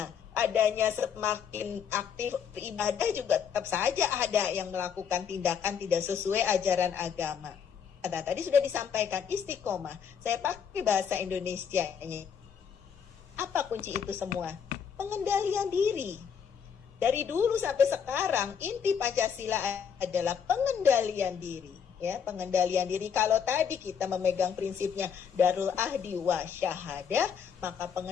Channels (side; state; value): right; quieter; 7.4 dB